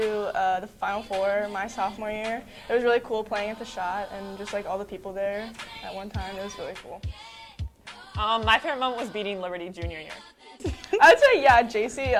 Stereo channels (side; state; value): both; identical; correlation 1.00